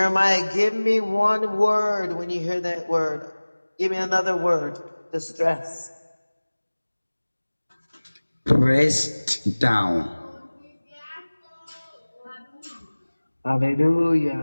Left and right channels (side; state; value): both; inverted; correlation -1.00